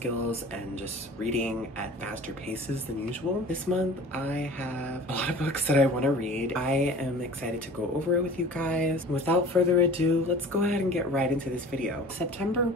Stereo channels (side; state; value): both; normal; correlation 0.42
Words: and just reading at faster paces than usual. This month I have a lot of books that I want to read. I am excited to go over it with you guys. Without further ado, let's go ahead and get right into this video. September